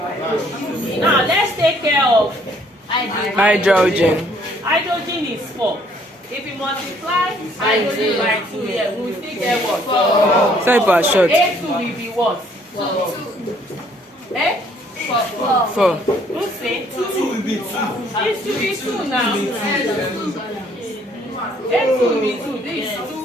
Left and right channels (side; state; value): both; normal; correlation 0.63